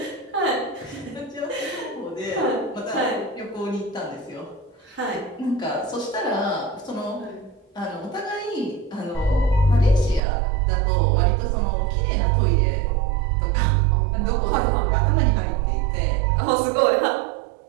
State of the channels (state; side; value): drops out; left; at 10.2 s